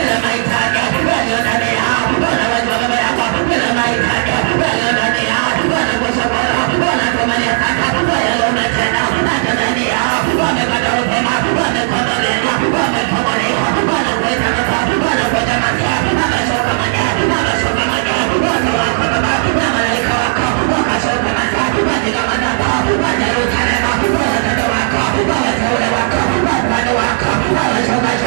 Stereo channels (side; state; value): left; silent; digital silence